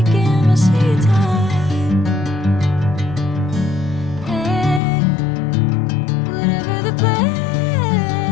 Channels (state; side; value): drops out; right; at 4.8 s